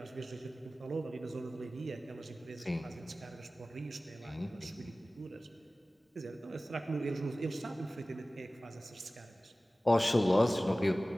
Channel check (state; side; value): normal; both; correlation 0.97